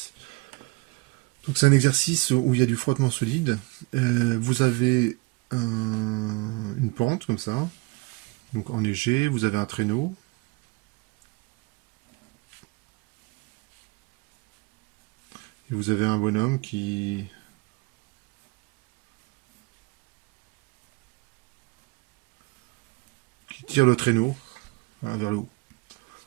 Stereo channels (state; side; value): quieter; left; 24.7 dB